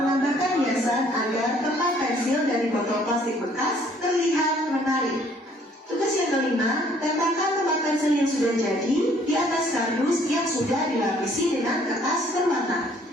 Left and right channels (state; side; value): normal; both; correlation 0.61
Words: hiasan agar tempat pensil dari botol plastik bekas terlihat menarik. Tugas yang kelima, tempelkan tempat pensil yang sudah jadi di atas kardus yang sudah dilapisi dengan kertas berwarna.